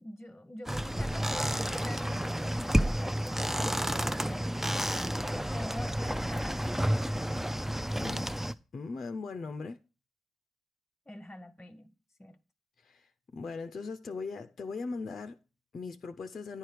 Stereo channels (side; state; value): both; normal; correlation 0.95